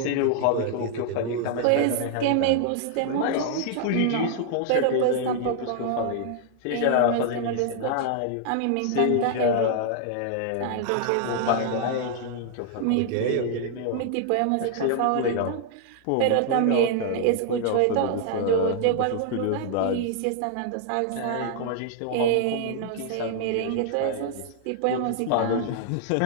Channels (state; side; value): different; both; correlation -0.01